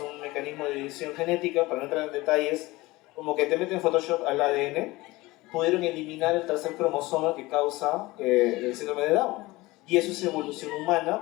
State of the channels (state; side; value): quieter; right; 20.5 dB